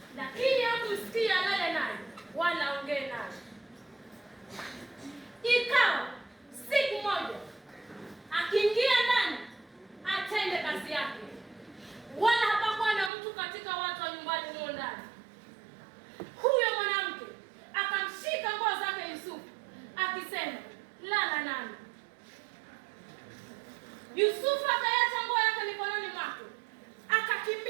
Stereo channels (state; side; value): drops out; left; at 13.1 s